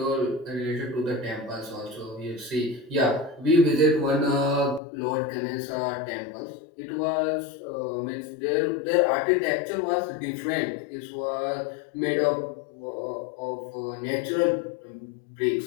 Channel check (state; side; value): drops out; right; at 4.8 s